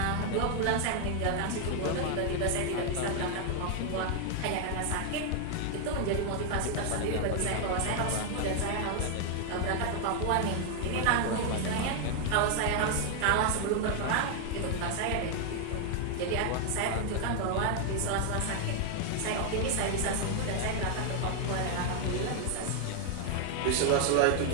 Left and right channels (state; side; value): different; both; correlation 0.00